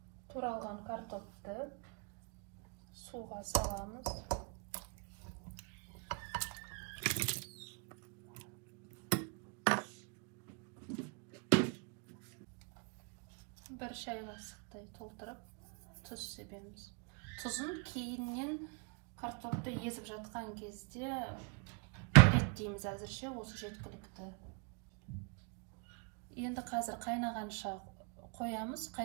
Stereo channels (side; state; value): left; quieter; 35.6 dB